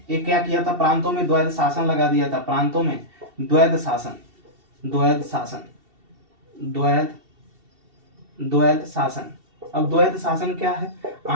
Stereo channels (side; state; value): left; late; 2.7 ms